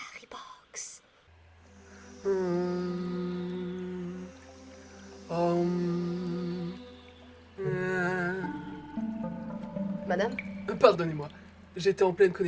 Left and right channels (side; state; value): both; identical; correlation 1.00